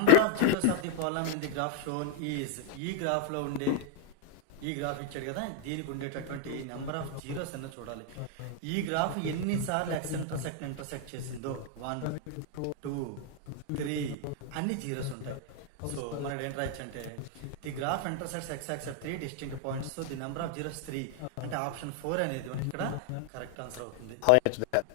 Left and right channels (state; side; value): different; both; correlation 0.00